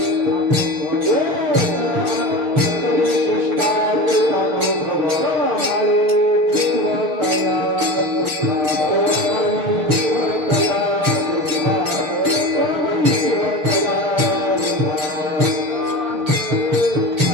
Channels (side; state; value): left; late; 6.5 ms